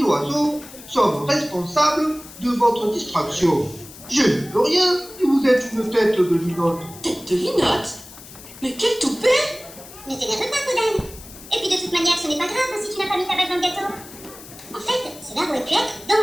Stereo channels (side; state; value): left; noise; hiss, 17 dB below the sound